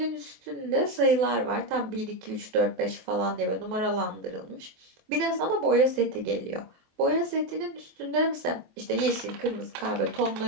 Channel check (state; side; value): late; left; 24 ms